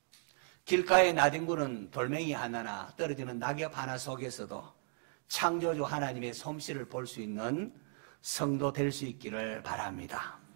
길가에 나뒹구는 돌멩이 하나나 떨어지는 낙엽 하나 속에서도 창조주 하나님의 솜씨를 볼 수 있는 성도 될 수 있기를 바랍니다.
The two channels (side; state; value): left; silent; 54 dB below the other